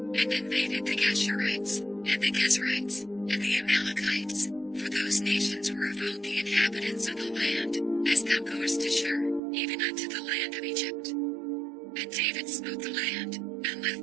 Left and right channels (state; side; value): drops out; left; at 9.4 s